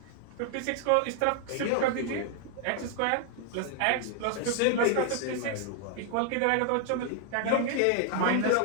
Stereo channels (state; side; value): different; both; correlation 0.00